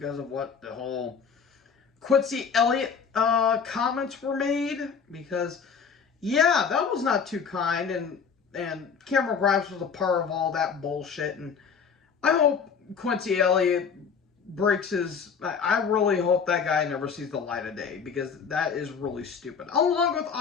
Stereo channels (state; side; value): quieter; right; 6.3 dB